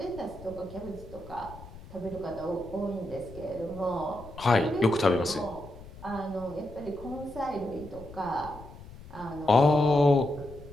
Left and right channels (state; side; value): noise; left; rumble, 17 dB below the sound